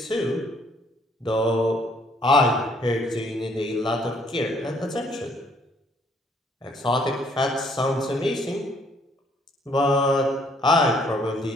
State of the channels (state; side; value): normal; both; correlation 0.64